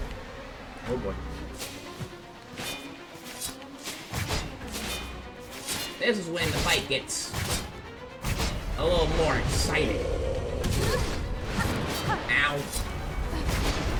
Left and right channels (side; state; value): both; identical; correlation 1.00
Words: Oh boy. This is when the fight gets a little more exciting.